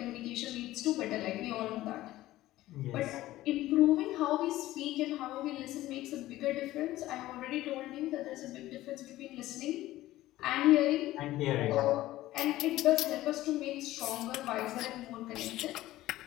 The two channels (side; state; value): right; quieter; 15.9 dB